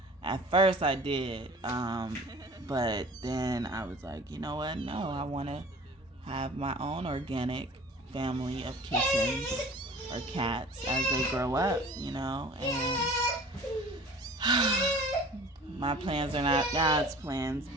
first I did, but then I was like, you know what? No, I want to have my own organic family of kittens or cats as they grow up, and my plans are not God's plans,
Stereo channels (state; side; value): normal; both; correlation 0.44